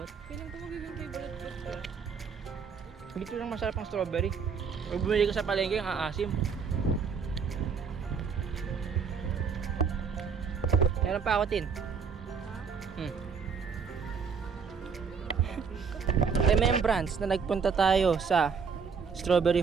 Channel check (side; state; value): left; quieter; 6.0 dB